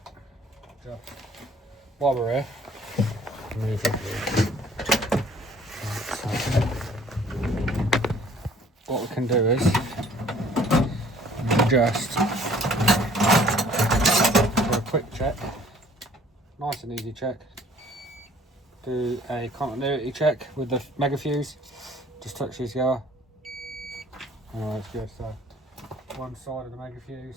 just, while we're here, move it. What we can do is just do a quick check, nice and easy check. Do a continuity check with the mega fuse. Just touch these together. Oh, that's good. So one side of the mega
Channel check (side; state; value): both; normal; correlation 0.56